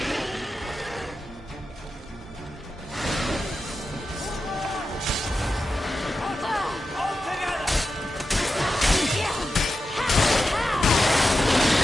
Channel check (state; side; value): normal; both; correlation 0.90